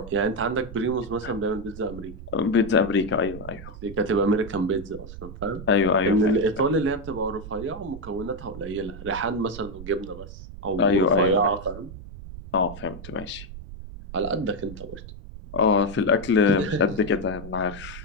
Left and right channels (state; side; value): noise; right; rumble, 13 dB below the sound